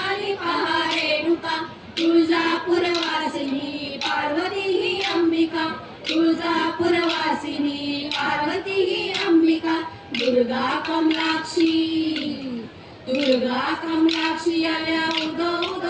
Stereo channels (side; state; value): both; identical; correlation 1.00